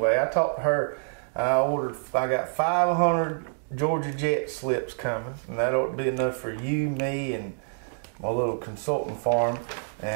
I talked to her. I got 500 Georgia Jet slips coming, and that ought to be enough for you, me, and my little consulting farm.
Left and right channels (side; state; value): left; silent; digital silence